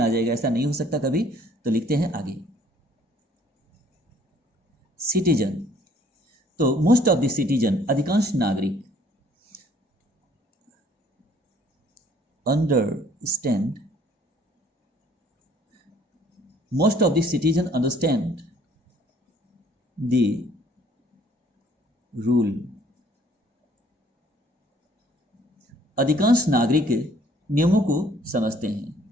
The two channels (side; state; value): both; normal; correlation 0.59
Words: जाएगा, ऐसा नहीं हो सकता कभी। तो लिखते हैं आगे सिटीजन। तो मोस्ट ऑफ द सिटीजन, अधिकांश नागरिक, understand, most of the citizen understand the rule। अधिकांश नागरिक नियमों को समझते हैं।